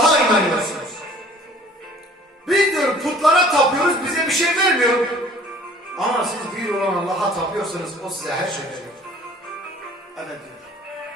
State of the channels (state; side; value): normal; both; correlation 0.51